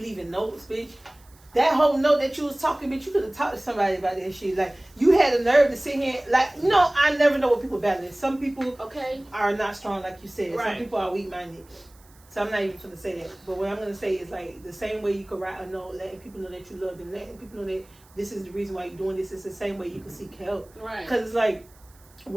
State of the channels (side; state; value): right; noise; hiss, 28 dB below the sound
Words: notes, bitch. That whole note that you was talking, bitch, you could have talked to somebody about that shit. Like, you had the nerve to sit here. Like, you know, I never know what people battling. Some people are not strong, like you said. Some people are weak-minded. So I'm not even going to say that. But what I'm going to say is, like, the same way you could write a note, letting people know that you love them, letting people know that this is the reason why you're doing this. It's the same way you can seek help. Right. Because it's like,